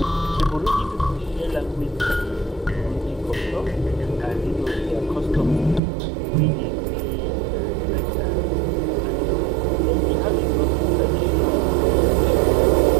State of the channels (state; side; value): drops out; left; at 5.8 s